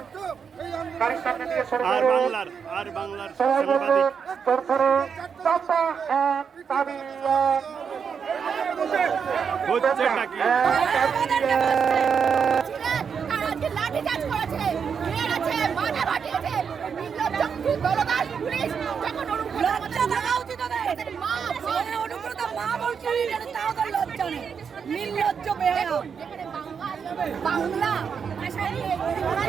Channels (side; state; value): left; quieter; 6.6 dB